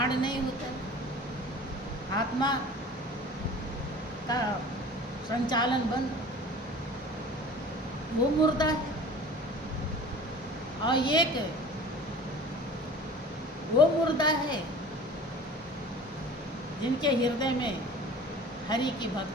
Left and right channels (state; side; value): normal; both; correlation 0.42